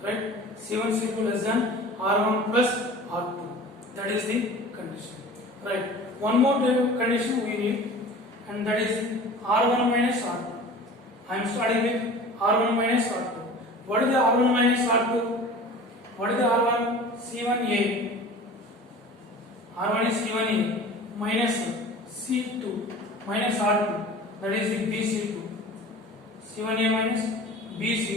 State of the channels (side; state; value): both; normal; correlation 0.40